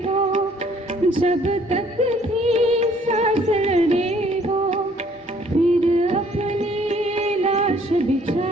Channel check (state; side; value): normal; both; correlation 0.61